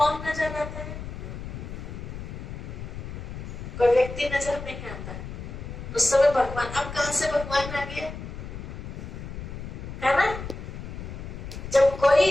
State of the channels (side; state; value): left; noise; rumble, 9 dB below the sound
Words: नजर आता है? कोई व्यक्ति नजर नहीं आता है, उस समय भगवान। अब कहां से भगवान आ गया, है ना। जब